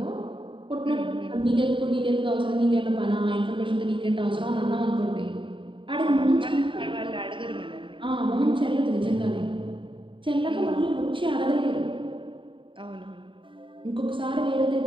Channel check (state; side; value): late; left; 0.25 ms